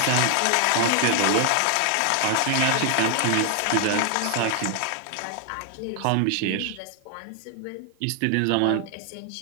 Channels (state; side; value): different; both; correlation 0.00